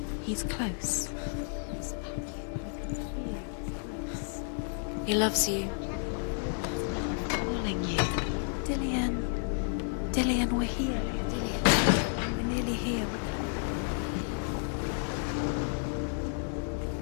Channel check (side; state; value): right; silent; 57 dB below the other